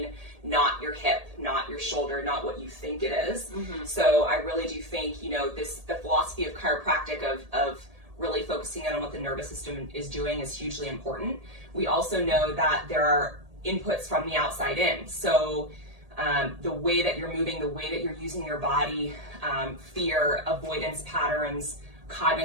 not your hip, not your shoulder, not what you think it is. So I really do think, you know, the philosophy of chiropractic of really focusing on what the nervous system is doing is hugely important. We also know that there are inputs from the outside in. So the way that you're moving, the way that you're using your body, fear, avoidance patterns,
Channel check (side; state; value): left; late; 1.8 ms